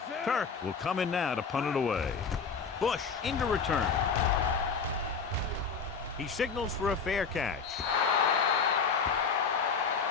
Turk will come in now to punt it away. Bush into return. He signals for a fair catch.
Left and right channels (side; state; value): right; quieter; 5.5 dB